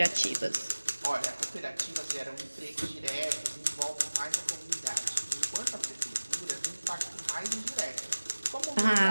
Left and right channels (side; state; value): both; inverted; correlation -1.00